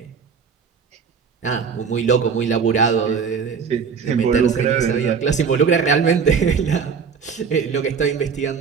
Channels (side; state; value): left; quieter; 6.2 dB